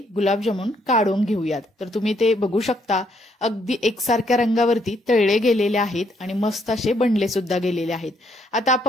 गुलाबजामुन काढून घेऊयात। तर तुम्ही ते बघू शकता अगदी एकसारख्या रंगावरती तळले गेलेले आहेत आणि मस्त असे बनले सुद्धा गेलेले आहेत। आता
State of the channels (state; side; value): normal; both; correlation 0.71